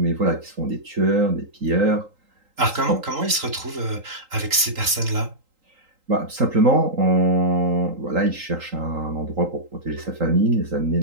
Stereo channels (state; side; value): late; left; 3.8 ms